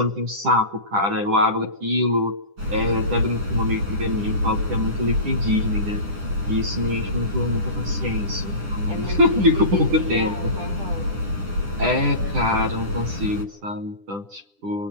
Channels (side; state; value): left; late; 10 ms